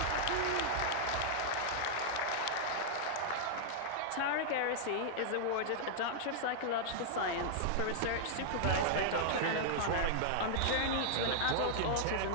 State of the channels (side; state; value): both; different; correlation -0.01